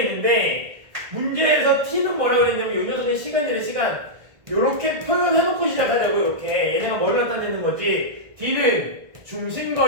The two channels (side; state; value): left; late; 1.7 ms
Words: 있는데 문제에서 t는 뭐라고 했냐면 이 녀석의 시간이래. 시간. 요렇게 표현해놓고 시작하자고. 이렇게 얘네가 뭐를 나타내는 거지. d는